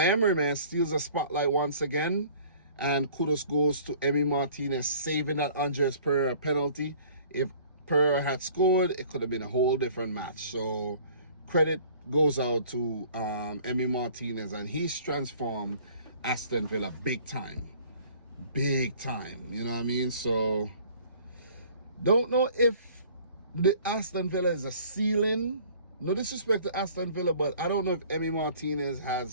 man, steals a spotlight once again. And kudos goes to Emi Martinez saving that Andres Pereira penalty. If Pereira had scored, it could have been a whole different match. So credit goes out to Emi Martinez, and he's transformed Aston Villa big time. Big time, you know what I mean? So, don't know if the Aston Villa is a ceiling. No disrespect to Aston Villa, but I don't know if Emi Martinez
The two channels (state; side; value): inverted; both; correlation -0.51